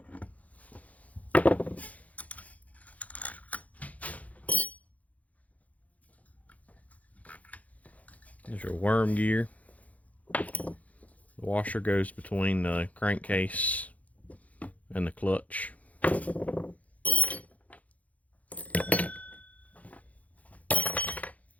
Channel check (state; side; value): late; right; 0.070 ms